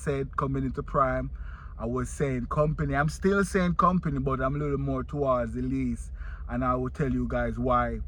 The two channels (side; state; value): both; identical; correlation 1.00